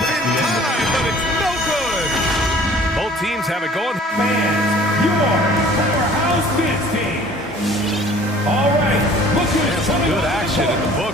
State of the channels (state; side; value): normal; both; correlation 0.51